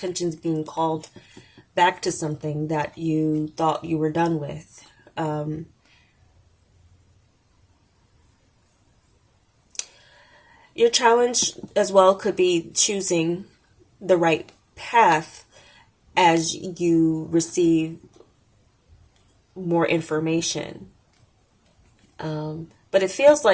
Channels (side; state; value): both; identical; correlation 1.00